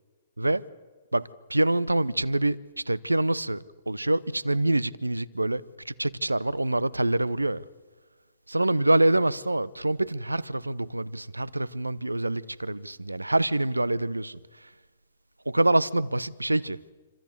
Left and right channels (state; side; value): inverted; both; correlation -0.99